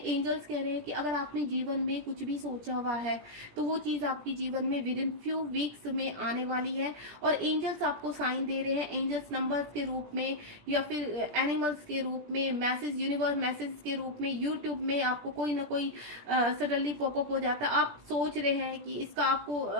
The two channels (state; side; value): late; left; 17 ms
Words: कह रहे हैं कि अगर आपने जीवन में कुछ भी सोचा हुआ है तो वो चीज आपके जीवन में विद इन फ्यू वीक्स में आने वाली है। और एंजल्स आपको साइन दे रहे हैं, एंजल्स नंबर्स के रूप में या फिर एनिमल्स के रूप में, मैसेज, यूनिवर्स मैसेज के रूप में, यूट्यूब में आपको कोई ना कोई सडनली पॉपअप हो जाता है, आप सोच रहे हैं कि इसका